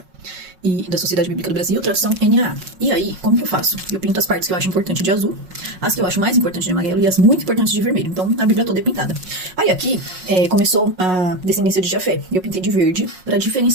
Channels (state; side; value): late; left; 5.4 ms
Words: e da Sociedade Bíblica do Brasil, tradução NAA. E aí, como que eu faço? Eu pinto as partes que eu acho importante de azul, as que eu acho mais importantes de amarelo e as muito importantes de vermelho. Então, a Bíblia toda é pintada. Aí aqui, começou a descendência de Jafé. E eu pintei de verde para